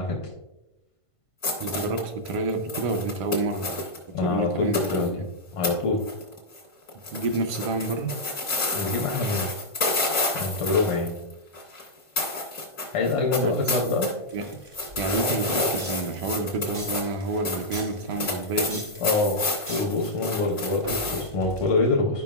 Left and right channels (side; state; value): right; late; 1.5 ms